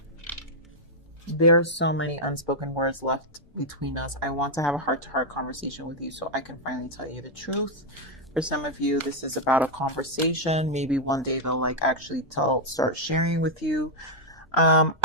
There's so many unspoken words left between us. I want to have a heart-to-heart conversation with you so I can finally tell you the truth. For some of you, this is about a conversation. Maybe one day they'll actually start sharing with you.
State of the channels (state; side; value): normal; both; correlation -0.02